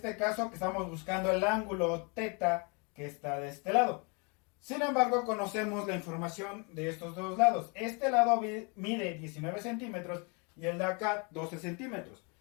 caso que estamos buscando el ángulo θ que está de este lado. Sin embargo, conocemos la información de estos dos lados. Este lado mide 19 centímetros y el de acá 12 centímetros.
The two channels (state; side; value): quieter; right; 33.0 dB